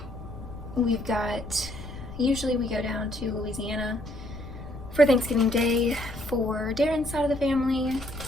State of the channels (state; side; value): noise; left; rumble, 12 dB below the sound